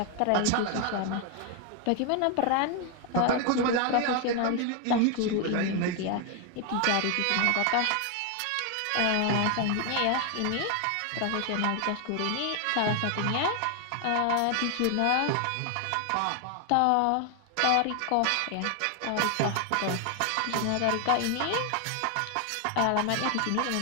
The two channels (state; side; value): different; both; correlation 0.01